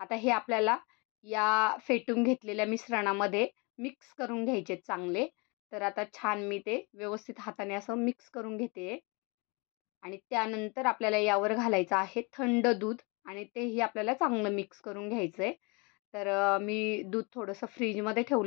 हे आपल्याला या फेटून घेतलेल्या मिश्रणामध्ये मिक्स करून घ्यायचे चांगले. तर आता छान मी ते व्यवस्थित हाताने असं मिक्स करून घेते आणि त्यानंतर आपल्याला यावर घालायचं आहे थंड दूध आणि तेही आपल्याला चांगलं मिक्स करून घ्यायचं आहे. तर मी दूध थोडंसं फ्रीजमध्ये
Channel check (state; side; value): quieter; right; 30.1 dB